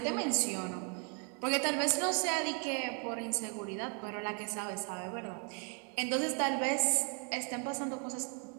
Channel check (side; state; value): left; quieter; 38.3 dB